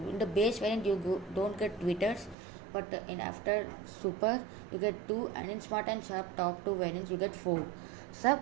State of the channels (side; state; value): left; drops out; at 2.4 s